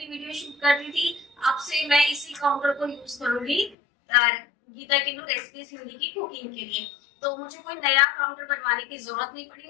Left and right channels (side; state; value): right; drops out; at 3.8 s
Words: वीडियो शूट करती थी, अब से मैं इसी काउंटर को यूज करूंगी गीता किन्नू रेसिपीज हिंदी की कुकिंग के लिए। तो मुझे कोई नया काउंटर बनवाने की जरूरत नहीं पड़ी,